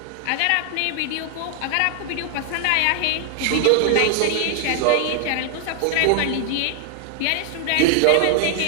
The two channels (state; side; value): different; both; correlation 0.00